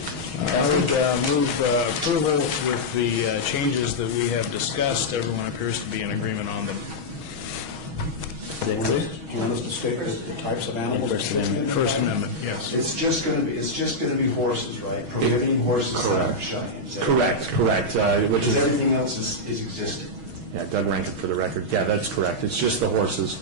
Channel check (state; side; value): late; left; 6.3 ms